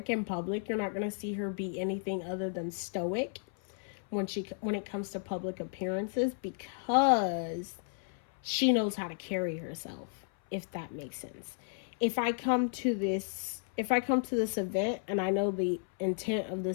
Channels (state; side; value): silent; right; 56 dB below the other